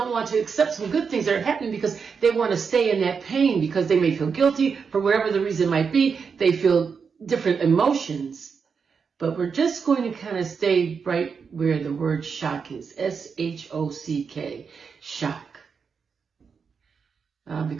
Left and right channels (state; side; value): quieter; left; 5.8 dB